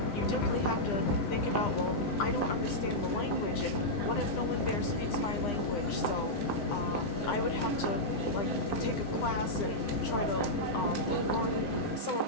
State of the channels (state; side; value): late; right; 9.8 ms